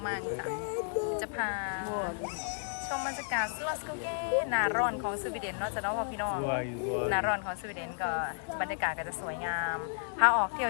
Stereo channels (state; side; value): silent; right; digital silence